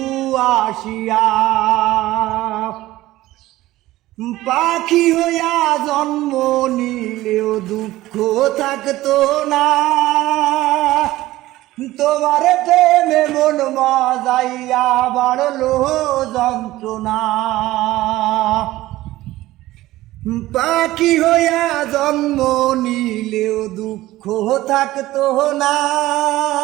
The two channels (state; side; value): quieter; left; 16.7 dB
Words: আসিয়া। পাখি হইয়া জন্ম নিলেও দুঃখ থাকতো না, তোমার প্রেমে মন মজাইয়া বাড়লো যন্ত্রণা। পাখি হইয়া জন্ম নিলেও দুঃখ থাকতো না,